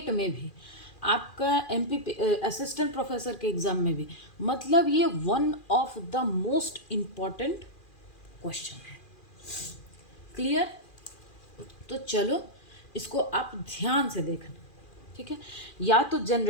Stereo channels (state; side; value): late; right; 2.4 ms